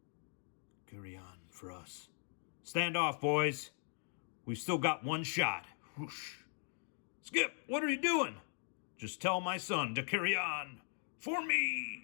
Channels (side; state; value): right; silent; 52 dB below the other